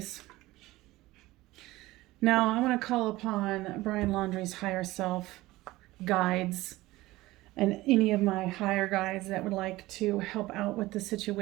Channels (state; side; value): quieter; left; 18.5 dB